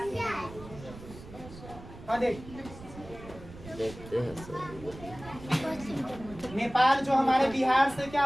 हाँ देख, देखते हैं सर। नेपाल जो हमारे बिहार से क्या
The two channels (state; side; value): noise; right; rumble, 16 dB below the sound